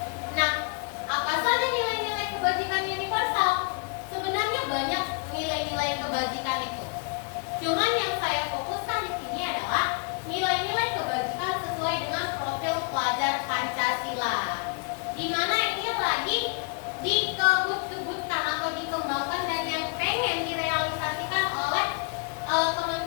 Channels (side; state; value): right; quieter; 35.0 dB